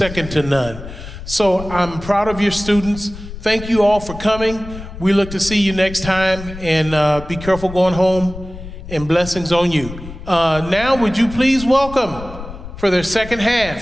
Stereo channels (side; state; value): left; noise; rumble, 12 dB below the sound